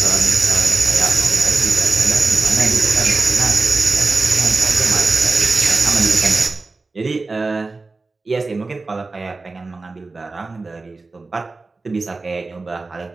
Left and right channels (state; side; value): quieter; left; 3.7 dB